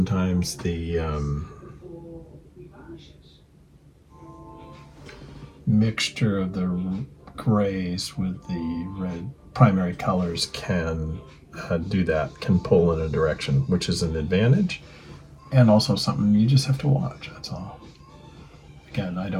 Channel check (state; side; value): identical; both; correlation 1.00